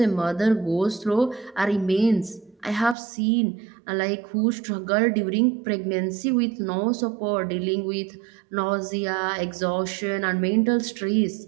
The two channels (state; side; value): drops out; left; at 3.0 s